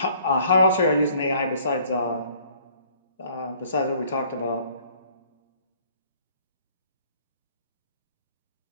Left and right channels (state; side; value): inverted; both; correlation -0.58